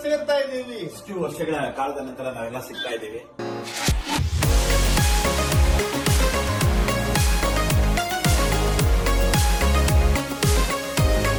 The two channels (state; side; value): identical; both; correlation 1.00